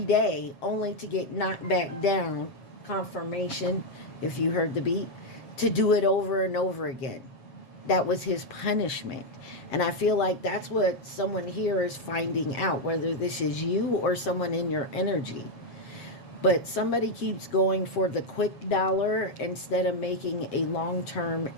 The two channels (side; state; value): right; late; 7.8 ms